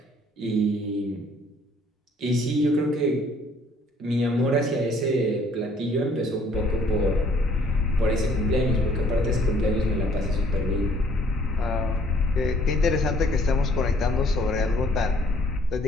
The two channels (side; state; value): both; normal; correlation 0.60